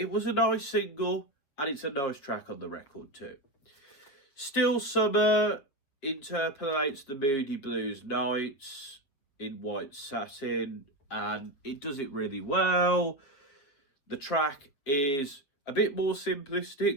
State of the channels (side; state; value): right; late; 7.5 ms